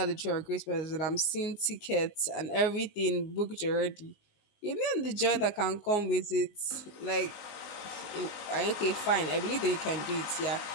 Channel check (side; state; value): right; late; 19 ms